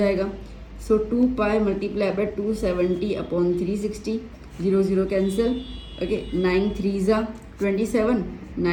सो 2 पाई multiply bye 270 upon 360, 0 0 cancel. Okay, 9 3 जा 27,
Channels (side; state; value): both; identical; correlation 1.00